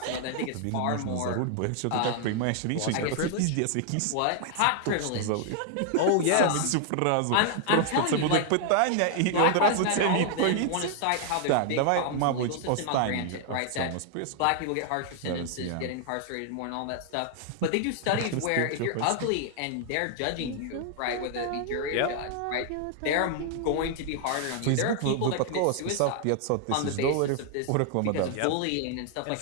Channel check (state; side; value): different; both; correlation 0.00